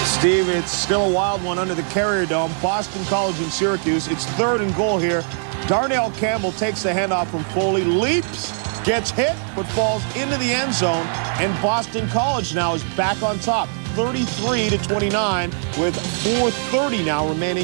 Steve, it's still a wild one under the Carrier Dome. Boston College and Syracuse. It's 3rd and goal here. Darnell Campbell takes the handoff from Foley, leaps, gets hit, but falls into the end zone. And Boston College now is back on top, 33-29, with 4:30 now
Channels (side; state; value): left; silent; digital silence